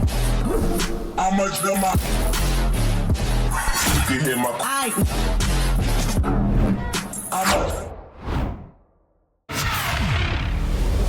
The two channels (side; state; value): both; identical; correlation 1.00